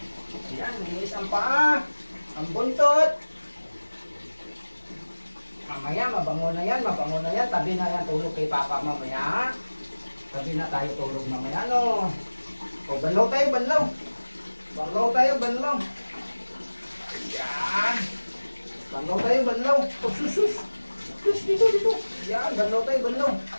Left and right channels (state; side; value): inverted; both; correlation -1.00